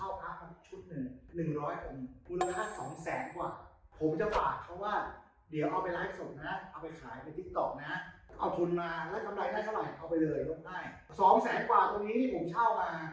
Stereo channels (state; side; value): identical; both; correlation 1.00